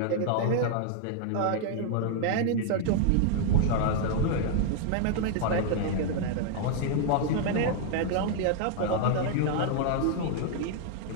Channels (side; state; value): both; different; correlation 0.00